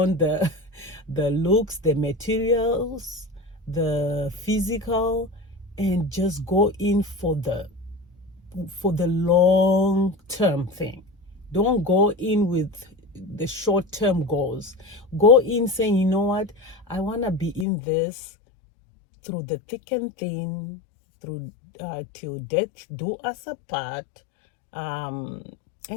the the looks, the materials, the physical, and just go in for the long term thing. Don't go in with the short term goals. Go in saying, you know what, I want to be in this through the thick and thin, through till death do us apart, and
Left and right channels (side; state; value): right; drops out; at 17.7 s